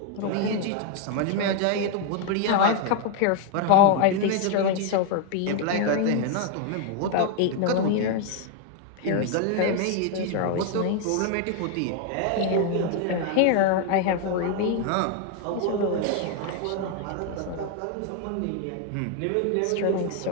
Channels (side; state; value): both; different; correlation 0.00